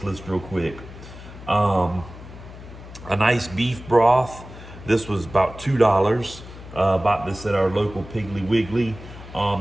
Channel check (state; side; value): noise; left; hum, 15 dB below the sound